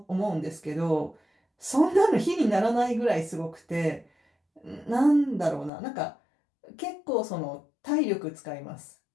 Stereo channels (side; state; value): right; drops out; at 5.7 s